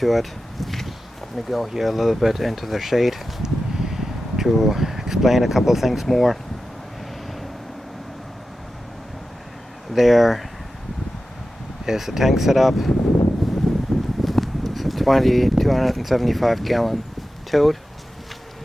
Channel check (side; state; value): both; normal; correlation 0.93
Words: it. Let me go here a little bit into the shade to explain a couple things more. there is the tank setup. It's a 275 gallon tote.